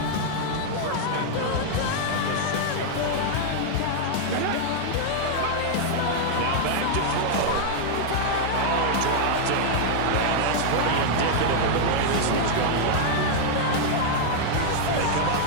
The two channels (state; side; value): different; both; correlation -0.01